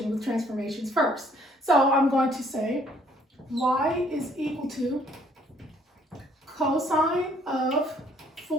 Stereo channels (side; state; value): both; normal; correlation 0.63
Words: with transformations first. So I'm going to say y is equal to cosine of